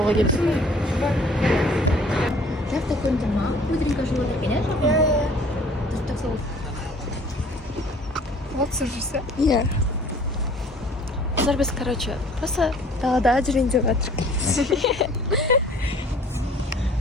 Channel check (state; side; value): normal; both; correlation 0.53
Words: келдік. Завтра какой-нибудь мам, быстренько животик, конечно? Ты же так слово. Вот слушайся. Я. Қазір біз, короче, просто далада жүрейін деп жатырмық.